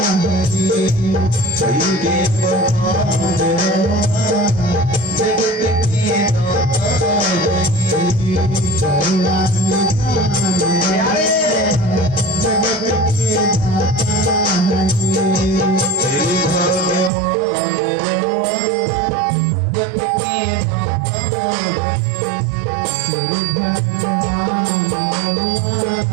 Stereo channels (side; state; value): left; drops out; at 17.1 s